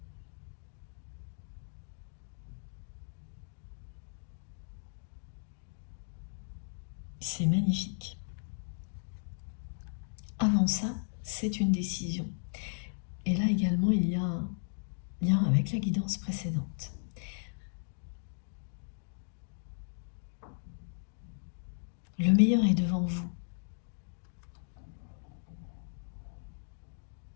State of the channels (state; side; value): silent; right; digital silence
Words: C'est magnifique. Avant ça, c'est une décision. Et là également, il y a un lien avec la guidance précédente. Le meilleur est devant vous.